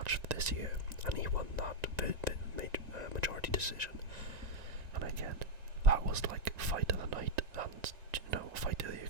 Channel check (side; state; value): left; late; 1.9 ms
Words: of this year, and he won that majority decision. And again, that was like fight of the night and fight of the year